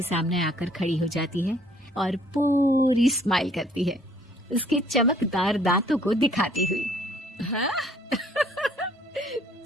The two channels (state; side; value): normal; both; correlation 0.61